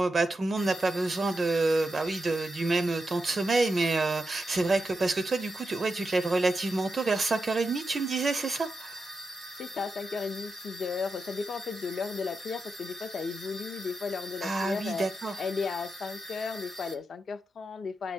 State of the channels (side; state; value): both; normal; correlation 0.88